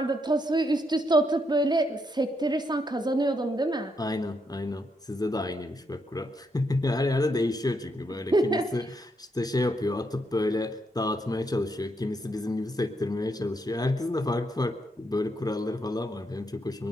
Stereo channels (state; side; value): normal; both; correlation 0.78